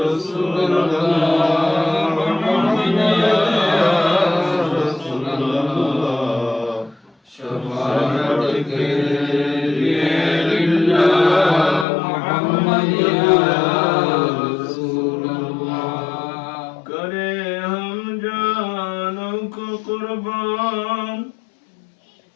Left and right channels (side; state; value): right; drops out; at 11.9 s